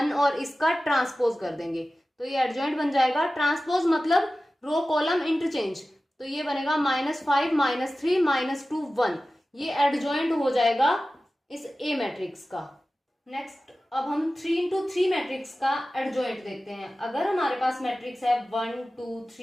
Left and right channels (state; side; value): normal; both; correlation 0.96